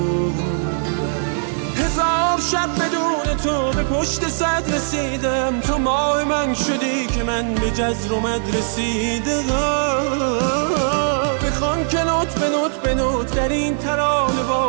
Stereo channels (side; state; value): left; silent; digital silence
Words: هزار شب بدون تو به پشت صد رسیدم. تو ماه من شدی که من به جزر و مد رسیدم. بخوان که نوت به نوت به نوت در این ترانه